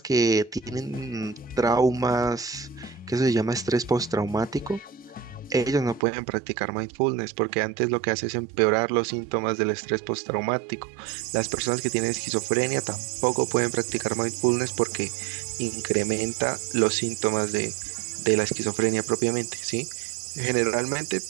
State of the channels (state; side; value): drops out; left; at 6.0 s